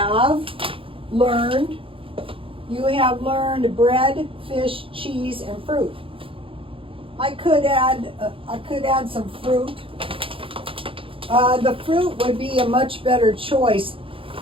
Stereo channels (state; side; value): late; left; 0.26 ms